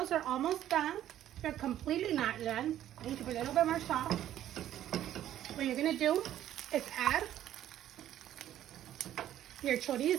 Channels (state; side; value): quieter; left; 12.0 dB